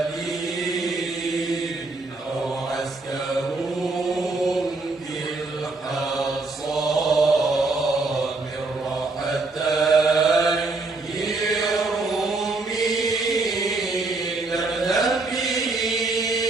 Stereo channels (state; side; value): quieter; left; 3.4 dB